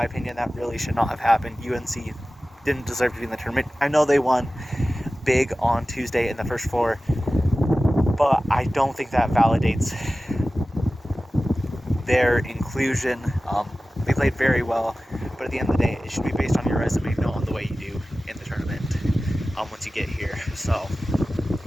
opinion, that really should not have happened. UNC didn't deserve to be in the tournament. I know they won big on Tuesday in the first 4, but I don't think that validates their inclusion. They played very well, but at the end of the day, it should be based on your resume, not on the way you do in the tournament once you get here. So,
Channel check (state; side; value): normal; both; correlation 0.96